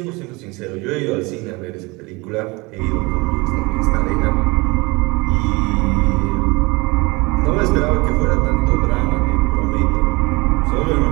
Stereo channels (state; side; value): quieter; left; 24.9 dB